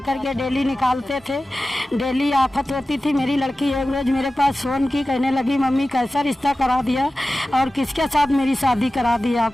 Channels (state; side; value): normal; both; correlation 0.95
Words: के डेली निकालते थे। डेली आफत होती थी। मेरी लड़की एक रोज़ मेरे पास फ़ोन की, कहने लगी मम्मी कैसा रिश्ता करा दिया और किसके साथ मेरी शादी करा दी आप?